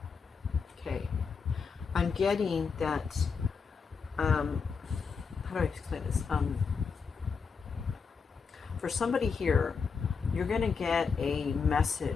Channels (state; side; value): quieter; right; 5.5 dB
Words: Okay. I'm getting that, how do I explain this? For somebody here, you're going to get a